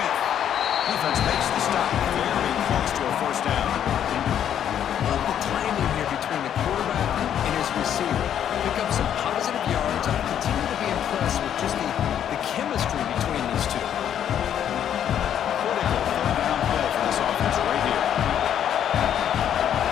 Defense makes the stop, very close to a first down. Love the timing here between the quarterback and his receiver. Pick up some positive yards. I continue to be impressed with just the chemistry between these two. Critical third down play for this offense right here.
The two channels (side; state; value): right; quieter; 9.7 dB